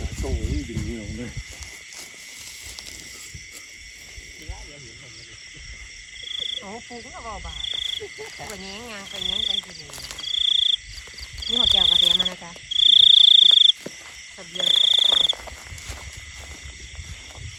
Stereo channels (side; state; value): both; identical; correlation 1.00